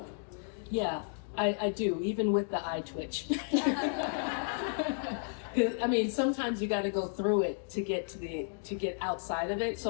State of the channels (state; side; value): silent; right; digital silence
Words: Yeah, I do, even with the eye twitch. I mean, sometimes you got to go through it to get outside of it.